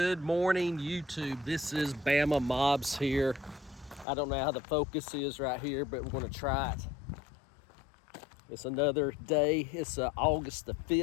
morning, YouTube. This is Bama Mobs here. I don't know how the focus is right here, but we're going to try it. It's another day. It's August the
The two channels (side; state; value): right; drops out; at 4.0 s